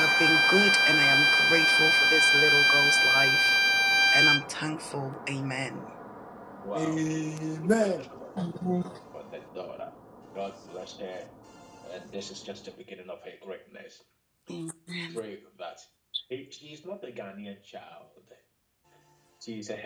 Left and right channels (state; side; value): identical; both; correlation 1.00